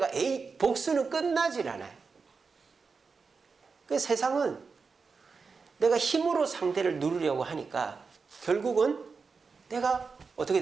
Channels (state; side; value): quieter; left; 4.9 dB